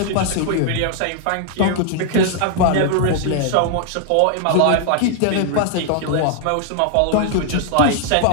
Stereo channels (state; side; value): different; both; correlation 0.00